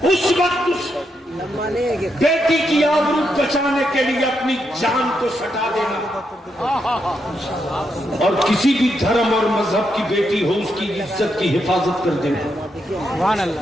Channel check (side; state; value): both; normal; correlation 0.81